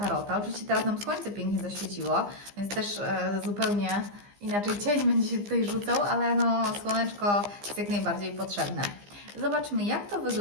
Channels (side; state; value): left; late; 15 ms